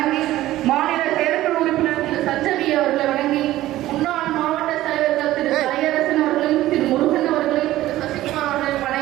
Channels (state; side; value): quieter; left; 15.3 dB